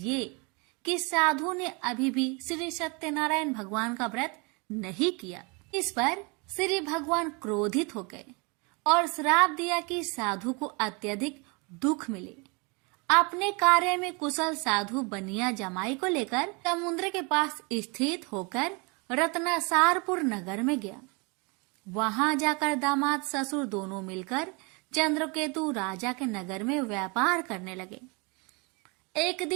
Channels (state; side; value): quieter; left; 30.4 dB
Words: कि साधु ने अभी भी श्री सत्यनारायण भगवान का व्रत नहीं किया। इस पर श्री भगवान क्रोधित हो गए और श्राप दिया कि साधु को अत्यधिक दुख मिले। अपने कार्य में कुशल साधु बनिया जमाई को लेकर समुद्र के पास स्थित होकर रत्नासारपुर नगर में गया। वहां जाकर दामाद ससुर दोनों मिलकर चंद्रकेतु राजा के नगर में व्यापार करने लगे। एक